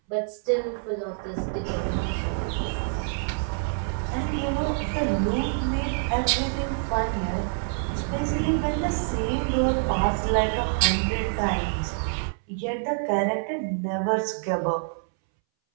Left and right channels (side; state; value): left; silent; 61 dB below the other